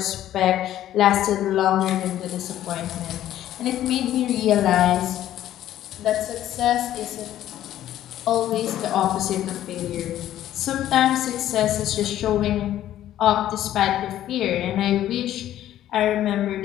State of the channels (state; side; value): quieter; right; 12.5 dB